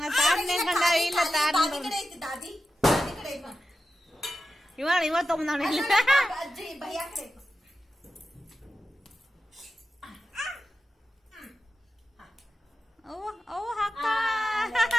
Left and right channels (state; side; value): normal; both; correlation 0.91